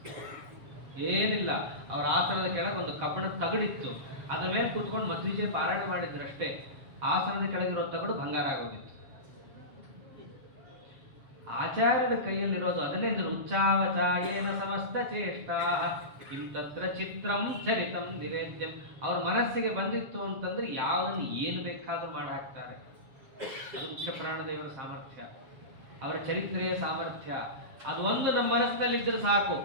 ಏನಿಲ್ಲ. ಅವ್ರ ಆಸನದ ಕೆಳಗೆ ಒಂದು ಕಬ್ಬಿಣದ ತಗಡಿತ್ತು, ಅದ್ರ ಮೇಲೆ ಕೂತ್ಕೊಂಡು ಮಧ್ವಿಜಯ ಪಾರಾಯಣ ಮಾಡಿದ್ರು ಅಷ್ಟೇ. ಆಸನದ ಕೆಳಗಿರೋ ತಗಡು ಬಂಗಾರ ಆಗೋಗಿತ್ತು. ಆಚಾರ್ಯರ ಕೈಯಲ್ಲಿರೋದು ಅದನ್ನೇ ಉಚ್ಚಾವಚಾಯೇನ ಸಮಸ್ತ ಚೇಷ್ಟಾ ಕಿಂತತ್ರ ಚಿತ್ರಂ ಚರಿತಂ ನಿವೇದ್ಯಂ. ಅವ್ರ ಮನಸ್ಸಿಗೆ ಬಂದಿತ್ತು ಅಂತಂದ್ರೆ ಯಾವನ್ನ ಏನು ಬೇಕಾದ್ರೂ ಮಾಡಿ ಹಾಕ್ತಾರೆ. ಅದು ಮುಖ್ಯ ಪ್ರಾಣದೇವರ ಸಾಮರ್ಥ್ಯ, ಅವರ ಚರಿತ್ರೆಯ ಸಾಮರ್ಥ್ಯ. ಅದು ಒಂದು ನಮ್ಮ ಮನಸ್ಸಿನಲ್ಲಿದ್ದರೆ ಸಾಕು,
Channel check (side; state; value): left; late; 7.2 ms